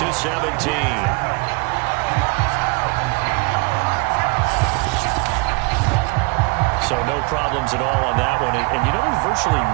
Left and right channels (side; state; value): left; quieter; 27.3 dB